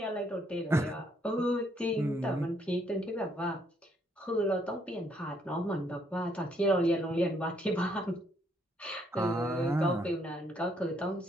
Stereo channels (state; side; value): normal; both; correlation 0.70